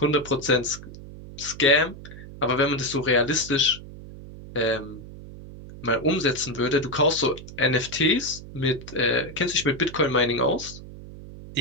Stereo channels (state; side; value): noise; right; hum, 15 dB below the sound